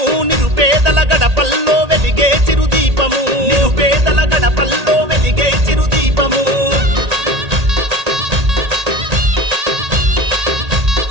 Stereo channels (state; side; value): late; left; 1.8 ms